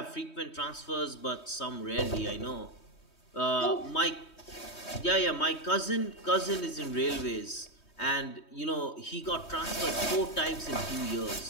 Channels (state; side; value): late; right; 3.2 ms